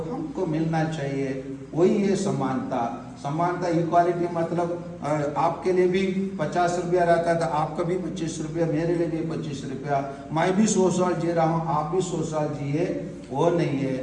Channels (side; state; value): both; identical; correlation 1.00